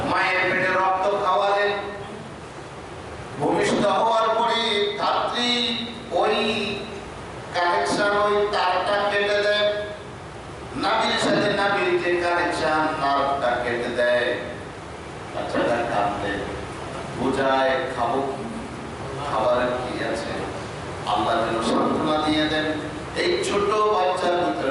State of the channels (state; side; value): identical; both; correlation 1.00